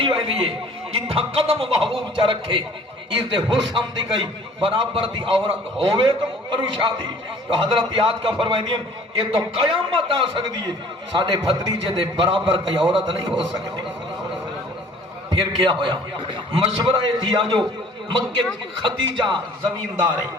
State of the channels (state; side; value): normal; both; correlation 0.51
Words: ویندی ہے جتھا قدم محبوب چا رکھے اس دے حسن دی گئی برابر دی عورت ہوئے تو کرو شادی تو حضرت یاد کا فرمائیں یہ تو قیامت آ سکتی ہے ساڑھے بھتریجے دے برابر کئی عورت نہیں ہو سکتی پھر کیا ہویا مشورہ دیا جو مکہ خدیجہ زمیندار ہے